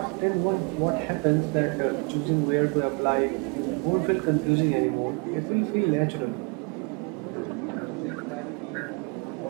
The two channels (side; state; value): left; quieter; 33.4 dB